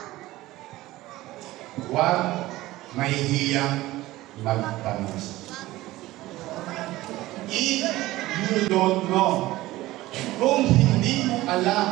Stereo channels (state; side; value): quieter; left; 17.4 dB